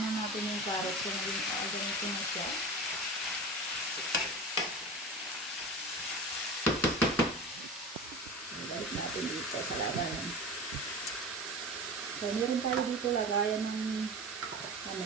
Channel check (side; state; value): both; normal; correlation 0.30